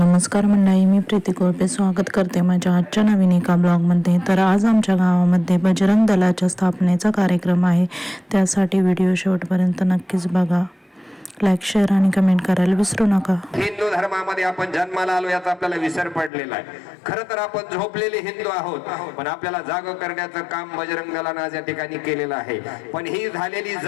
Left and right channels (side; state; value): right; drops out; at 16.3 s